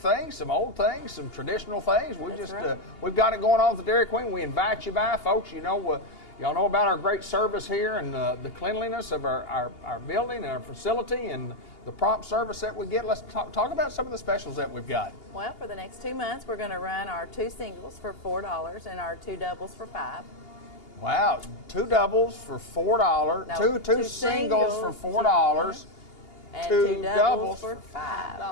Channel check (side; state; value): right; late; 2.8 ms